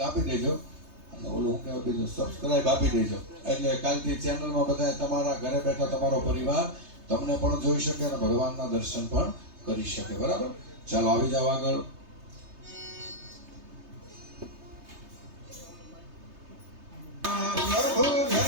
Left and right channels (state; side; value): late; left; 3.3 ms